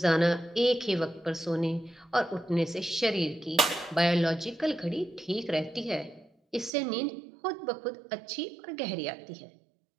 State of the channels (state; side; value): drops out; left; at 6.7 s